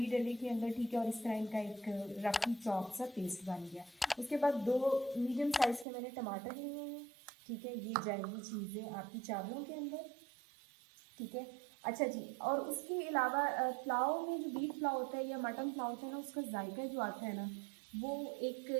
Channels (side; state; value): left; drops out; at 5.9 s